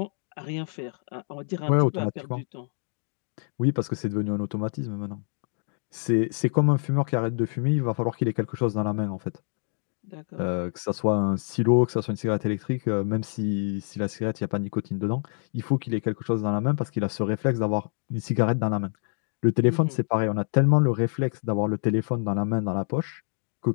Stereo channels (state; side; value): silent; right; 60 dB below the other